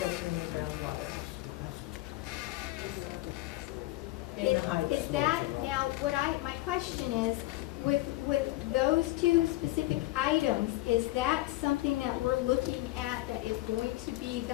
the groundwater. In the high. is that, now, my question is, with those two specific items, is that something that we're looking at that is going to be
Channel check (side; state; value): right; quieter; 18.3 dB